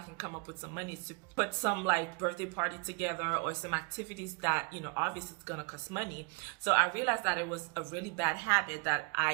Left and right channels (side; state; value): left; quieter; 31.9 dB